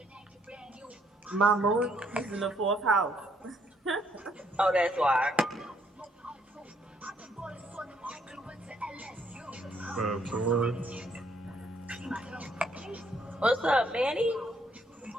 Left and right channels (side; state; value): both; normal; correlation 0.69